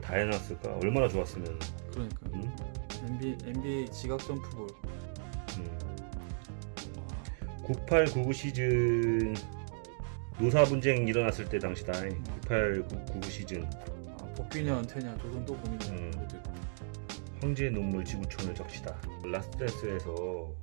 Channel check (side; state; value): left; silent; digital silence